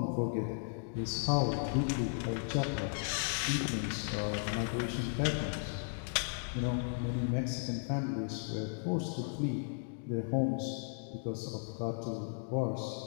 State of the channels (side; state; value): right; silent; digital silence